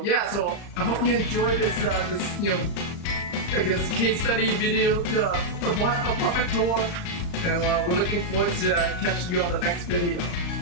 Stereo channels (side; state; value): right; late; 35 ms